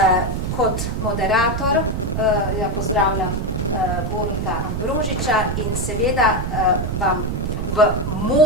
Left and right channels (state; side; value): noise; right; rumble, 2 dB below the sound